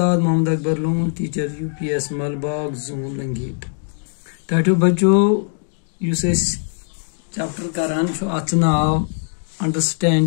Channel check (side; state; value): right; silent; digital silence